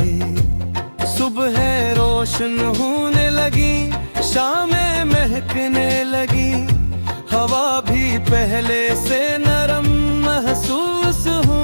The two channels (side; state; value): both; inverted; correlation -1.00